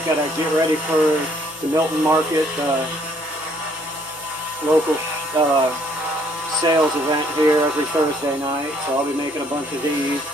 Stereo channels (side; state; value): both; normal; correlation 0.65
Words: got to get ready for the Milton Market, local sales event here every Thursday night. So I'll be making a bunch of these.